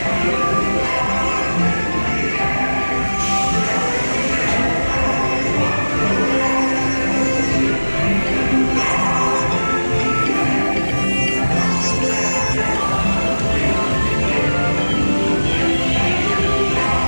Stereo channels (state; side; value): inverted; both; correlation -1.00